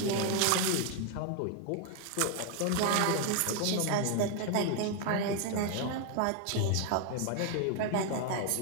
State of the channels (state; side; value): different; both; correlation 0.01